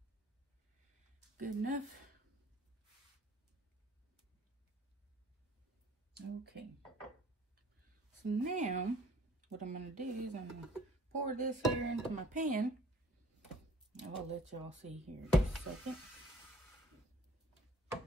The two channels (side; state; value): both; normal; correlation 0.54